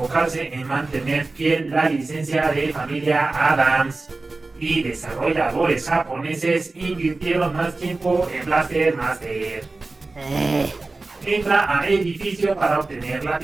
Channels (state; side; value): quieter; left; 3.4 dB